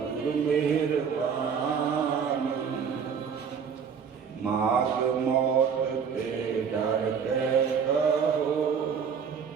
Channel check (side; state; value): left; quieter; 6.7 dB